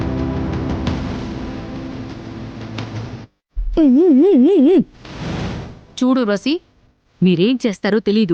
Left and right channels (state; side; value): identical; both; correlation 1.00